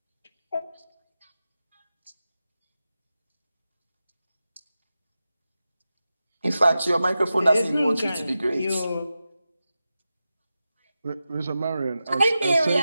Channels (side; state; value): both; inverted; correlation -0.92